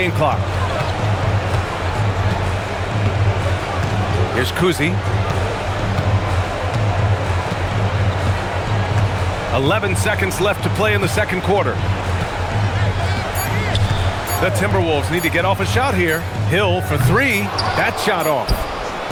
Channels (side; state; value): both; identical; correlation 1.00